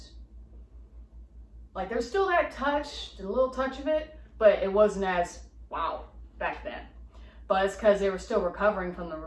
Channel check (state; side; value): identical; both; correlation 1.00